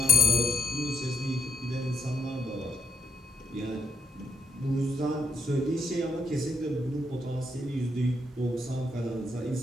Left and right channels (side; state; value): both; normal; correlation 0.72